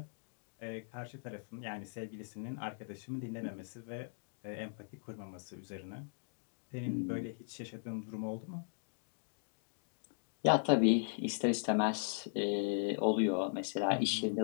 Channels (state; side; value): silent; right; digital silence